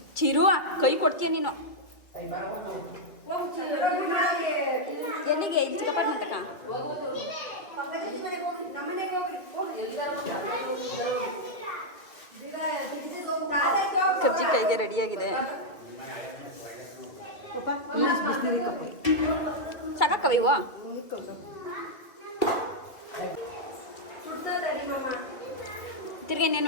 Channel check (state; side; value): late; right; 2.0 ms